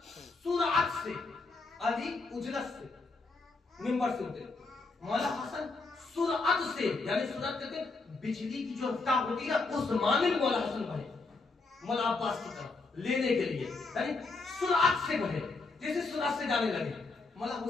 सुरअत से, अली उजलत से मिंबर से उतरे। मौला हसन सुरअत से, यानी सुरअत कहते हैं बिजली की जो रफ्तार होती है उस माने में मौला हसन बढ़े मौला अब्बास की तरफ लेने के लिए, यानी सुरअत से बढ़े, जैसे सुरअत से जाने लगे। मौला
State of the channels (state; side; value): quieter; right; 3.7 dB